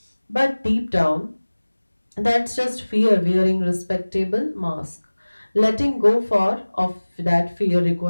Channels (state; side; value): inverted; both; correlation -1.00